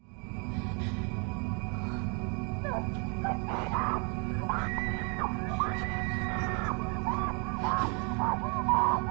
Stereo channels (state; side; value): quieter; left; 35.2 dB